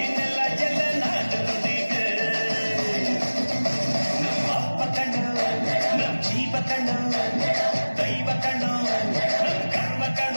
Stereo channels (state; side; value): inverted; both; correlation -1.00